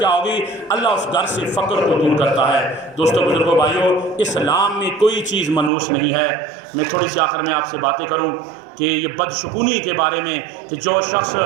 ہوگی؟ اللہ اس گھر سے فقر کو دور کرتا ہے. دوستو بزرگوں بھائیوں، اسلام میں کوئی چیز منحوس نہیں ہے. میں تھوڑی سی آخر میں آپ سے باتیں کروں کہ یہ بدشگونی کے بارے میں، کہ جو شخص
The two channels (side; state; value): left; drops out; at 5.7 s